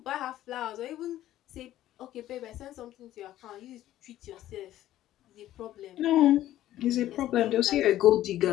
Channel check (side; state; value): right; quieter; 13.6 dB